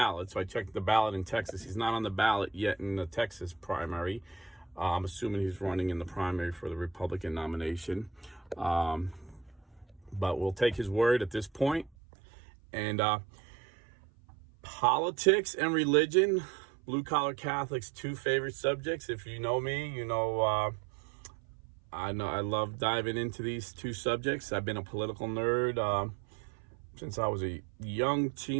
So I checked the ballot in Texas. He's not on the ballot yet in the Texas primary. I'm assuming he's running in the primary for the Republican nomination. But we'll take his word at this point. And politics and religion, blue-collar Catholics, two favorite subjects. If you know me, I love diving into these two subjects. I've been a political nerd since I was a young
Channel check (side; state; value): left; drops out; at 11.9 s